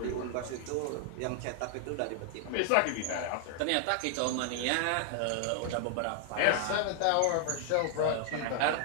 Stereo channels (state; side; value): different; both; correlation 0.00